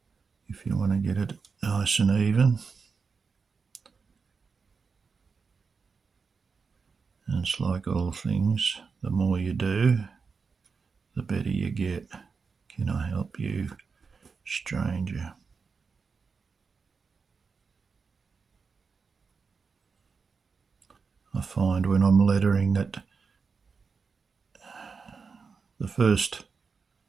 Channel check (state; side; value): quieter; left; 5.2 dB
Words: if you want to get it nice and even. And it's like all things, the more you do, the better you get. Can I help you, stranger? I find when I'm lettering that the first